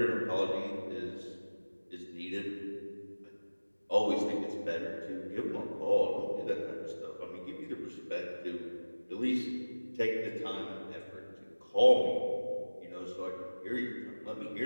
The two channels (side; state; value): both; inverted; correlation -1.00